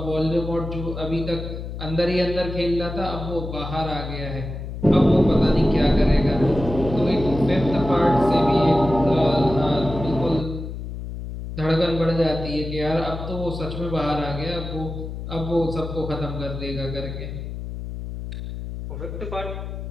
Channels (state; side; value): noise; left; hum, 8 dB below the sound